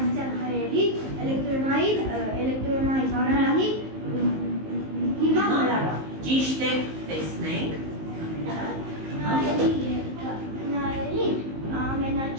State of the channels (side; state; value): left; late; 19 ms